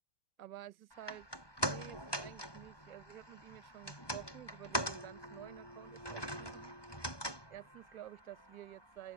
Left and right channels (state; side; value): late; right; 1.2 ms